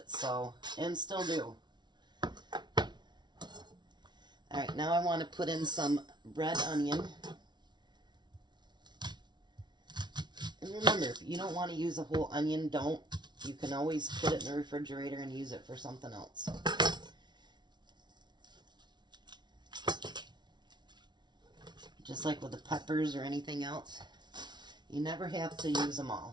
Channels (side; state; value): left; late; 0.21 ms